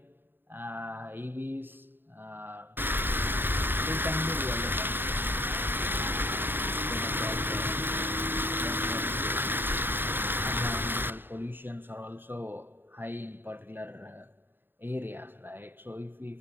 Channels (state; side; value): late; left; 0.096 ms